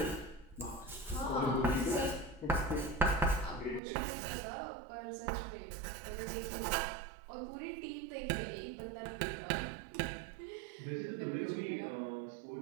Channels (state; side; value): drops out; left; at 3.8 s